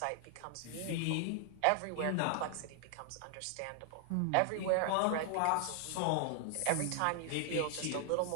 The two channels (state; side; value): different; both; correlation 0.00